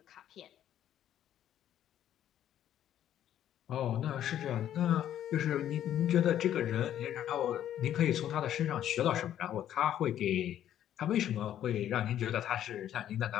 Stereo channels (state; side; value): quieter; right; 11.1 dB